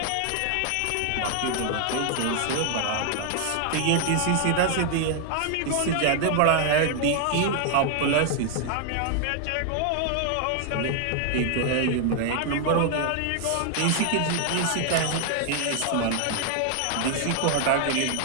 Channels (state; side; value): different; both; correlation 0.00